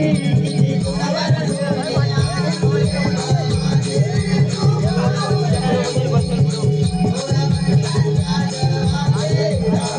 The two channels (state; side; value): identical; both; correlation 1.00